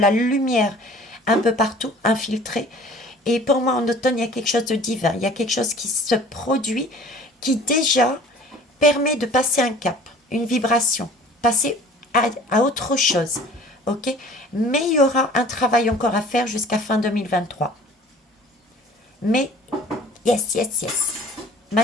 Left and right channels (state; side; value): normal; both; correlation 0.48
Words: lumière un peu partout, infiltrée. Et pour moi, en automne, il y a quelque chose de divin. Il y a quelque chose qui se produit, qui déjà permet de passer un cap, une vibration, passer à autre chose. Ok? Mais il y aura un travail encore à faire jusqu'à fin 2023. Mais, yes, yes, yes.